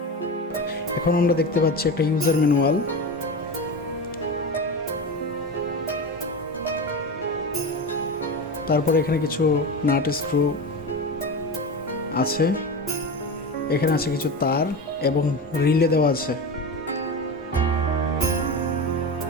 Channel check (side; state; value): both; normal; correlation 0.24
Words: এখন আমরা দেখতে পাচ্ছি একটা ইউজার ম্যানুয়াল। তারপরে এখানে কিছু নাট স্ক্রু আছে, এখানে আছে কিছু তার এবং রিলে দেওয়া আছে।